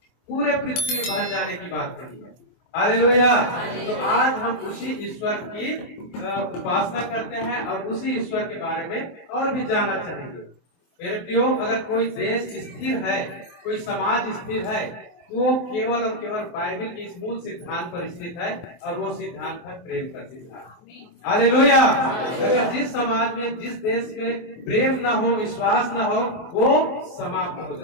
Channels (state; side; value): late; right; 23 ms